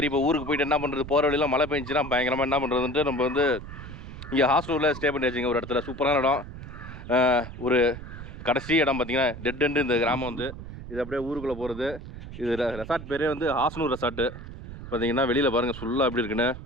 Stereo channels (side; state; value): right; noise; rumble, 12 dB below the sound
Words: இப்போ ஊருக்கு போயிட்டு என்ன பண்ணுறது, போகிற வழியில் மழை பெஞ்சுன்னா பயங்கரமாக என்ன பண்ணுறதுன்ட்டு நம்ம வந்து இங்கே ஹாஸ்டலில் ஸ்டே பண்ணி வச்சுங்க. ஒரு இடத்துல சூப்பரான இடம், ஒரு கடைசி இடம் பார்த்தீங்கன்னா டெட் எண்டு இந்த கிராமம் வந்து. இது அப்படியே ஊருக்குள்ளே போகிறது. இது ரெசார்ட் பேரே வந்து ஹாஸ்னூர் ரெசார்ட்டு. பார்த்தீங்கன்னா வெளியில் பாருங்கள் ஃபுல்லாக எப்படி இருக்குன்னு,